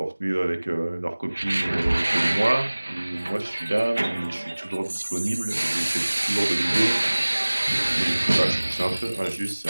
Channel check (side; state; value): both; inverted; correlation -1.00